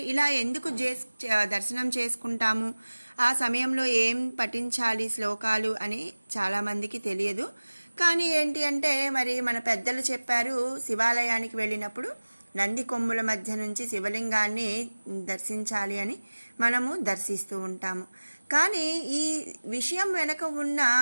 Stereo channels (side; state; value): both; inverted; correlation -1.00